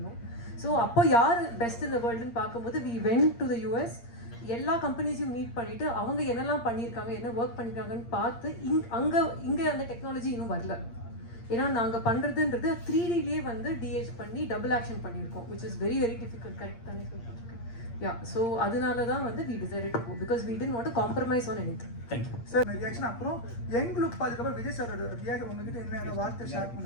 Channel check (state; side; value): late; right; 8.7 ms